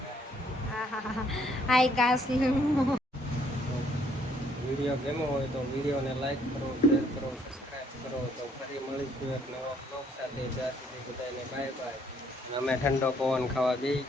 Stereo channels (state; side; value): normal; both; correlation 0.66